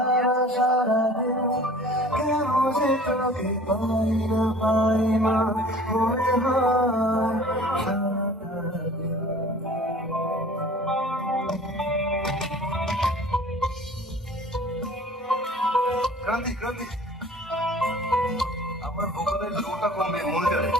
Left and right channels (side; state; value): both; normal; correlation 0.47